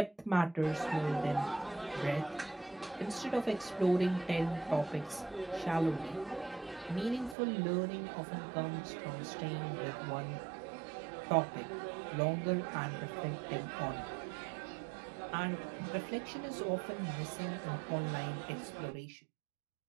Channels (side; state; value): left; drops out; at 7.4 s